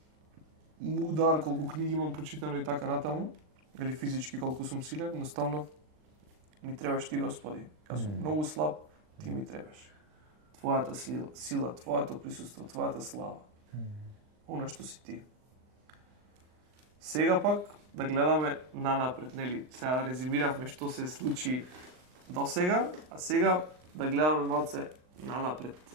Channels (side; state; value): left; late; 39 ms